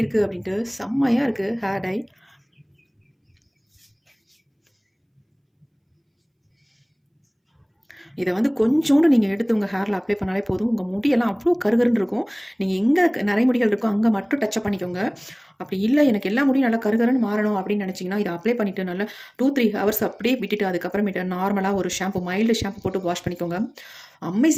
இருக்குது அப்படின்ட்டு, செம்மையாக இருக்குது ஹேர் டை. இதை வந்து கொஞ்சோண்டு நீங்கள் எடுத்து உங்கள் ஹேரில் அப்ளை பண்ணாலே போதும், உங்கள் முடியெல்லாம் அவ்வளோ கருகருன்னு இருக்கும். நீங்கள் எங்கே நரைமுடிகள் இருக்கோ அங்கே மட்டும் டச்சப் பண்ணிக்கோங்க. அப்படி இல்லை எனக்கு எல்லா முடியும் நல்லா கருகருன்னு மாறணும் அப்படின்னு நினச்சிங்கன்னா இதை அப்ளை பண்ணிவிட்டு நல்லா 2-3 ஹவர்ஸ் அப்படியே விட்டுட்டு அதுக்கப்புறமேட்டு நார்மலாக ஒரு ஷாம்பு, மைல்டு ஷாம்பு போட்டு வாஷ் பண்ணிக்கோங்க.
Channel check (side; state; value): both; identical; correlation 1.00